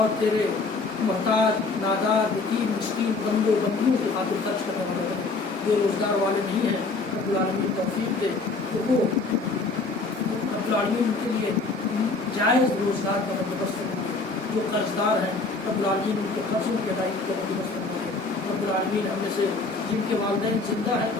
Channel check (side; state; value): right; quieter; 3.7 dB